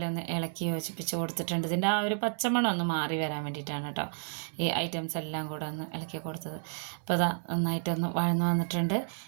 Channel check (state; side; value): silent; left; digital silence